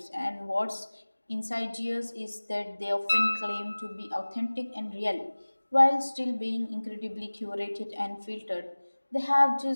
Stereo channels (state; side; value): inverted; both; correlation -1.00